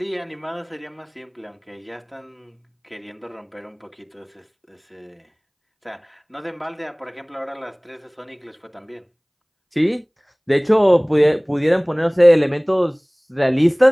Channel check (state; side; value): identical; both; correlation 1.00